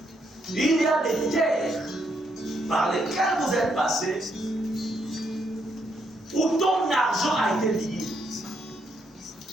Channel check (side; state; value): both; normal; correlation 0.76